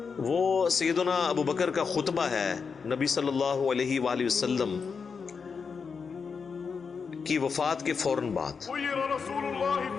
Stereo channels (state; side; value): quieter; right; 5.6 dB